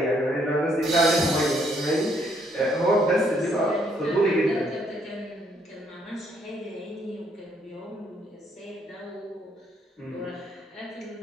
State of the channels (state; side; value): normal; both; correlation 0.70